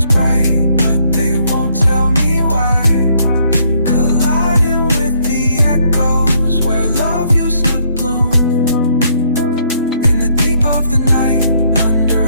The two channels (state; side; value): inverted; both; correlation -0.69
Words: bright, but they won't tell me why. Colliding with the echoes where love used to bloom. In the deep of the night, under